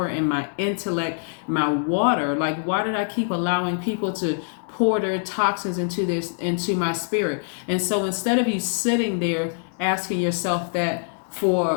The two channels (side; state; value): right; silent; digital silence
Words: and my intellect, my water? Like, why did I keep allowing people to pour their toxins into my spirit? And so instead of you sitting there asking yourself that for